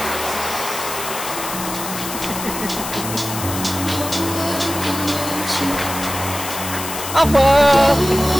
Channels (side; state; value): left; noise; hiss, 7 dB below the sound